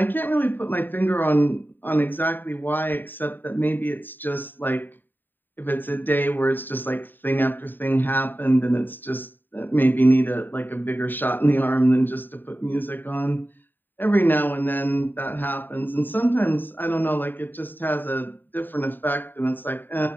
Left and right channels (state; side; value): late; right; 0.092 ms